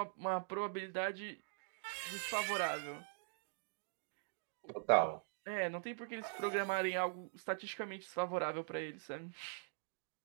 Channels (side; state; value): left; silent; digital silence